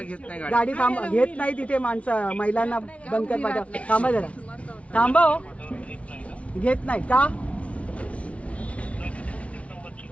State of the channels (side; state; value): right; late; 0.063 ms